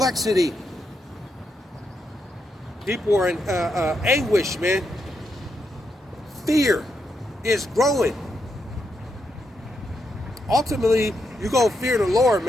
People are in anguish, man. Fear is growing. Ultimately, you're going to fear the Lord,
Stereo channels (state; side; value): normal; both; correlation 0.82